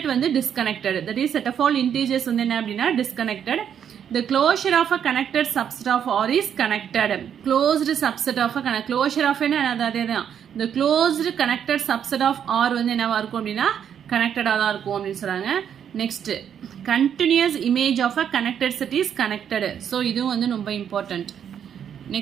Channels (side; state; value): left; quieter; 8.6 dB